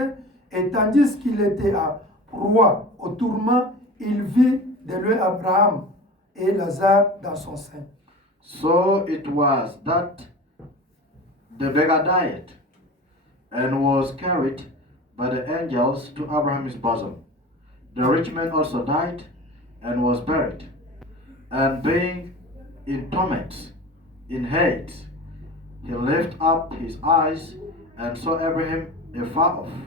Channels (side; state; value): both; normal; correlation 0.35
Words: et tandis qu'il était à proie au tourment, il vit de loin Abraham et Lazare dans son sein. So it was that the beggar died and was carried by the angels to Abraham's bosom. The rich man also died and was buried. And being in torment, in hate, he lifted up his eyes and saw Abraham afar off,